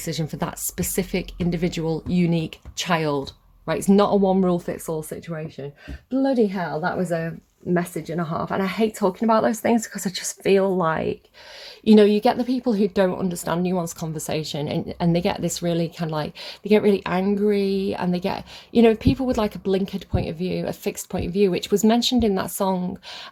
for that specific individual, unique child, right? It's not a one rule fits all situation. Bloody hell, that was a message and a half. And I hate talking about those things because I just feel like, you know, you get the people who don't understand nuanced conversation, and they get this really kind of like, they get really angry, and they get, you know, people with like a blinkered point of view, a fixed point of view, which was mentioned in that song,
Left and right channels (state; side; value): identical; both; correlation 1.00